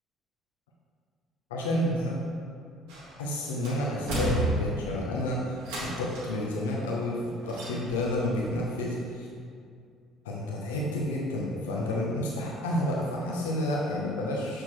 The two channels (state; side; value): normal; both; correlation 0.46